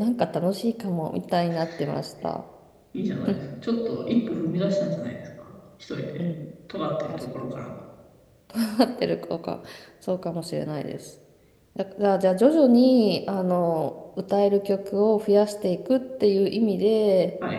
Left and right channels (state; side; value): identical; both; correlation 1.00